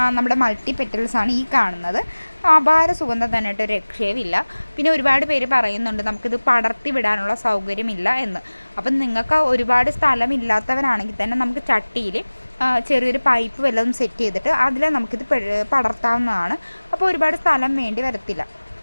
നമ്മുടെ മൾട്ടി പെറ്റൽസാണ് ഈ കാണുന്നത്. അപാര സുഗന്ധം തന്നെ ഒരു രക്ഷയുമില്ല. പിന്നെ ഒരുപാട് പേര് പറയുന്നുണ്ട് നമുക്കിത് പടർത്തി വിടാനുള്ള സൗകര്യമില്ല എന്ന്. അപ്പം നിങ്ങൾക്ക് ഒരുപാട് സ്ഥലമില്ലാത്തവരാണെങ്കിൽ തന്നെ നമുക്ക് ചട്ടിയിൽ ചെറിയൊരു പൈപ്പ് വല്ലതും സെറ്റ് ചെയ്തിട്ട് അതിൽ നമുക്കിത് പടർത്താവുന്നതാണ്. അപ്പോൾ ഒരുപാട് സ്ഥലം വേണ്ടി വരത്തില്ല.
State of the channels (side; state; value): both; inverted; correlation -1.00